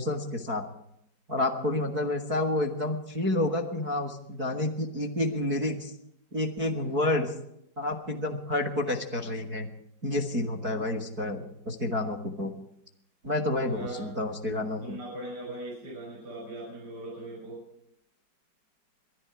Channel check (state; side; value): late; left; 4.6 ms